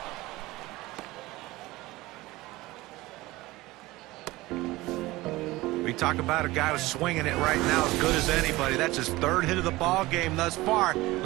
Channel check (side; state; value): left; quieter; 19.4 dB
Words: We talk about a guy who's swinging it right now as good as anybody. That's his 3rd hit of the ball game thus far.